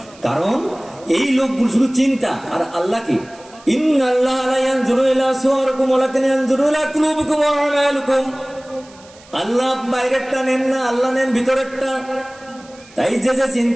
কারণ এই লোকগুলো শুধু চিন্তা, আর আল্লাহ কি আল্লাহ বাইরেরটা নেন না, আল্লাহ নেন ভিতরেরটা। তাই যে যে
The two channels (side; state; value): right; noise; hiss, 25 dB below the sound